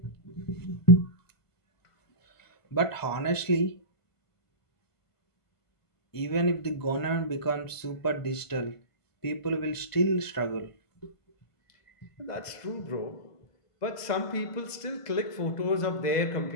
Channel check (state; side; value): late; right; 1.5 ms